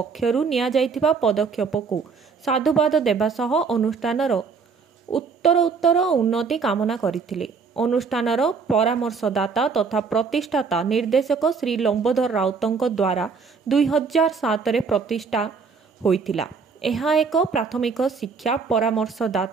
निया जाइथिबा पदक्षेपकु साधुवाद देबा सह अनुष्ठानर उत्तर उन्नति कामना करथिले। अनुष्ठानर परामर्शदाता तथा प्रतिष्ठाता निर्देशक श्री लंबोदर राउतଙ୍କ द्वारा 2007 रे प्रतिष्ठा होइथिला। ଏହା ଏକ ପ୍ରାଥମିକ ଶିକ୍ଷା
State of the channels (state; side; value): quieter; left; 5.2 dB